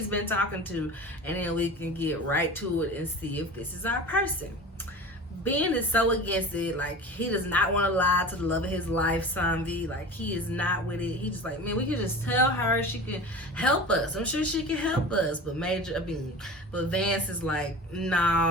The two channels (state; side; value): normal; both; correlation 0.35